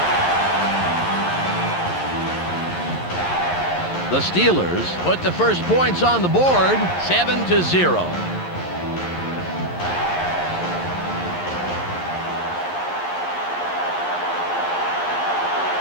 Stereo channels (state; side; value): late; right; 11 ms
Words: The Steelers put the first points on the board, 7-0.